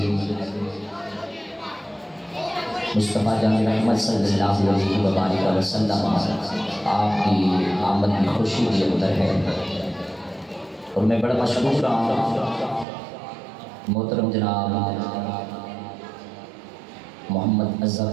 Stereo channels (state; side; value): drops out; left; at 12.9 s